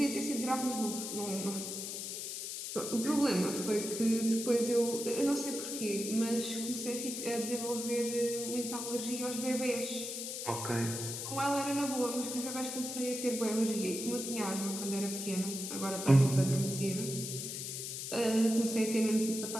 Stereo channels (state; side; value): noise; left; hiss, 5 dB below the sound